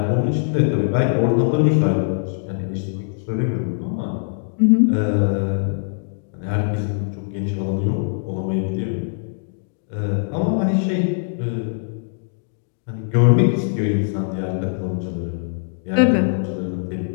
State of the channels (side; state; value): right; silent; digital silence